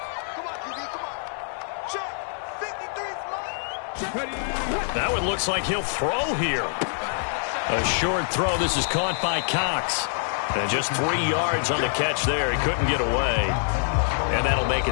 That one looks like he'll throw here. A short throw. This is caught by Cox. And just 3 yards on the catch there. He couldn't get away. And that'll make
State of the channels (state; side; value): silent; right; 61 dB below the other